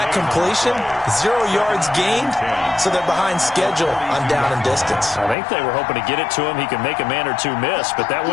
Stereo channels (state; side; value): drops out; right; at 5.4 s